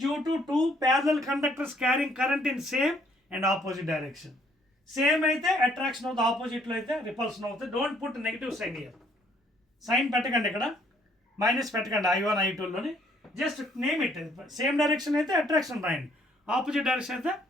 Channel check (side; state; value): both; normal; correlation 0.65